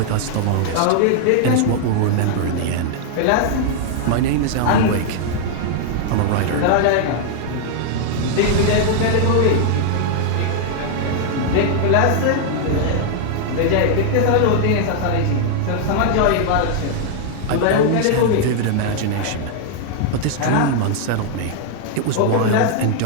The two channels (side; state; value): both; different; correlation 0.00